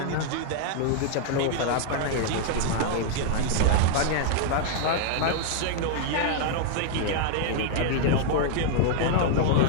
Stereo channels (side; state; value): both; different; correlation -0.01